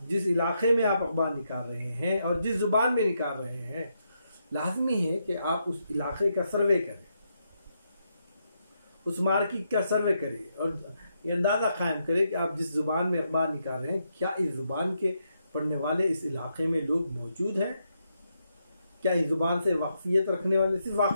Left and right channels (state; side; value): inverted; both; correlation -0.81